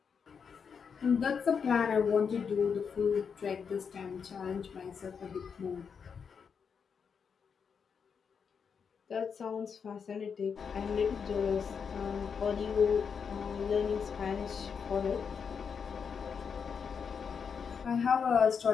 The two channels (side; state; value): right; quieter; 6.4 dB